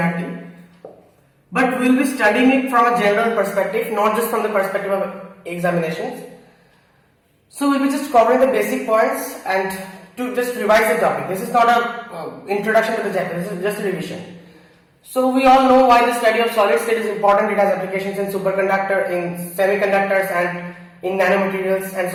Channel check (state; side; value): identical; both; correlation 1.00